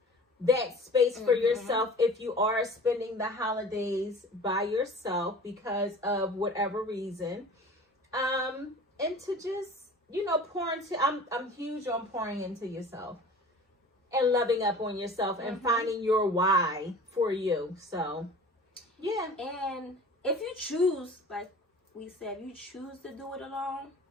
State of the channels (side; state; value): both; normal; correlation 0.42